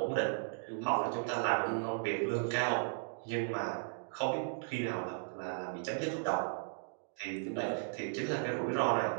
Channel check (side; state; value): left; silent; digital silence